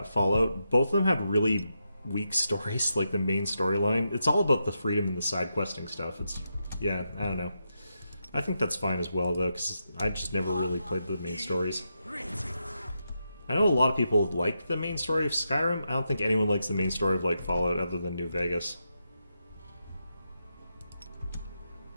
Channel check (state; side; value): inverted; both; correlation -0.85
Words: Fallout, both of them have really weak stories, like the main storyline. It's all about the freedom and the side questing stuff. Yeah, I don't know. I think that's fine as well, though, because I just never really played the main stories. I know a lot of people like the main story of Skyrim. I don't think anyone likes the main story of, like, Fallout other than New Vegas.